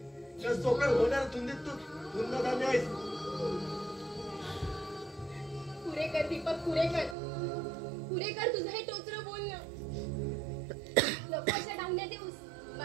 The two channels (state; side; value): drops out; left; at 7.2 s